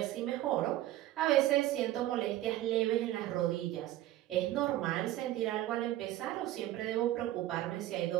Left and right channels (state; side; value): quieter; left; 14.6 dB